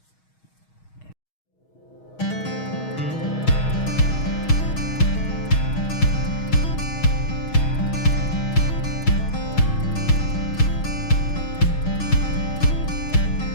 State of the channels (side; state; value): right; late; 6.3 ms